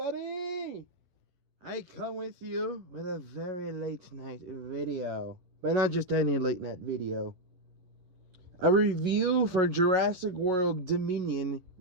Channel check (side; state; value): left; late; 11 ms